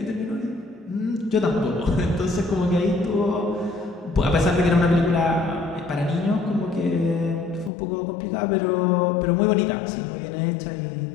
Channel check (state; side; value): drops out; right; at 7.7 s